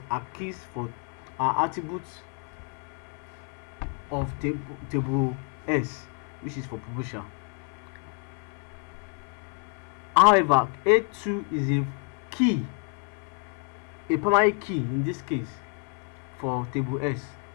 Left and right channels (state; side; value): quieter; right; 36.5 dB